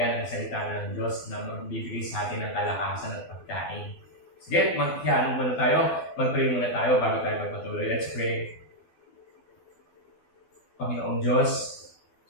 ang salita ng Diyos na magbibigay sa atin ng kalakasan at pagkain. Sige, mag-hiyanong muna tayo. Mag-pray muna tayo bago tayo magpatuloy. Let's pray. Panginoong Diyos,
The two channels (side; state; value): right; late; 12 ms